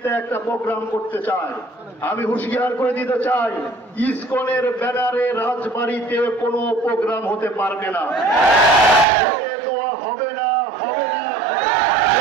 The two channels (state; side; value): drops out; left; at 9.1 s